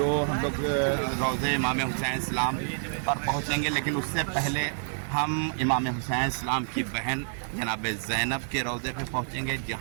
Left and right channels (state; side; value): silent; left; digital silence